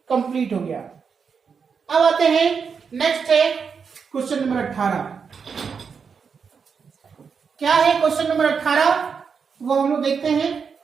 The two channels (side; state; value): left; quieter; 6.0 dB